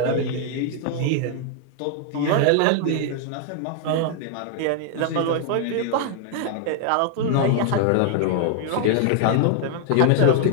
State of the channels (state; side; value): different; both; correlation 0.00